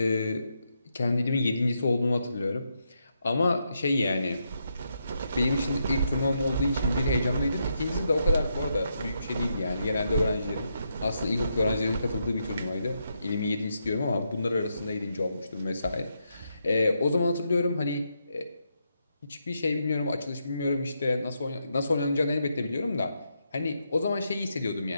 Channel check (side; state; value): both; inverted; correlation -0.81